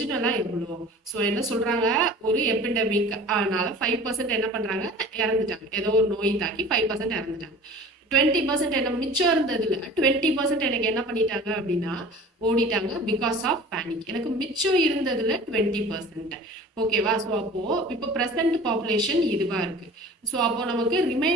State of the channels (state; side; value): normal; both; correlation 0.42